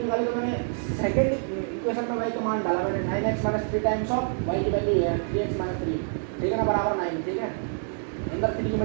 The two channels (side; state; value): left; silent; 60 dB below the other